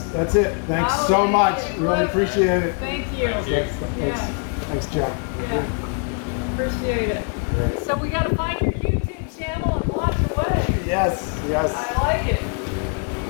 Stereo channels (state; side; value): quieter; right; 38.5 dB